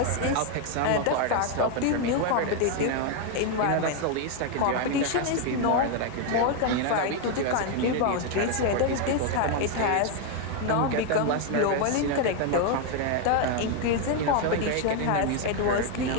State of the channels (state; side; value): different; both; correlation 0.01